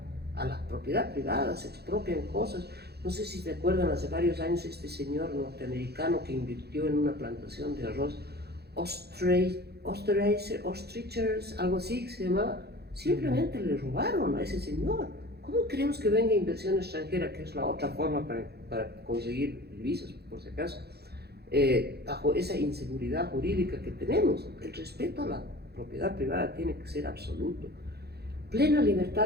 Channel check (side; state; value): left; late; 0.47 ms